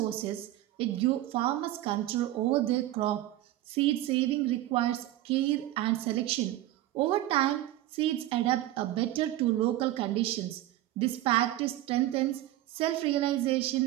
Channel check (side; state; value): left; quieter; 14.9 dB